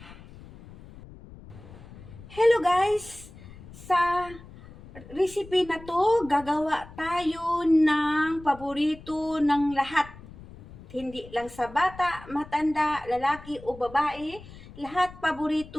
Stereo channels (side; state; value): left; noise; rumble, 18 dB below the sound